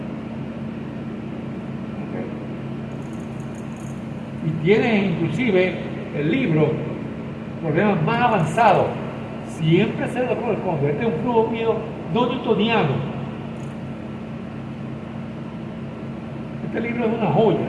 ¿Okay? Y tiene inclusive el libro problemas más avanzados. Siempre se lo corresponde. Este es un flujo mío no newtoniano. Este libro es una joya.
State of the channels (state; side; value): identical; both; correlation 1.00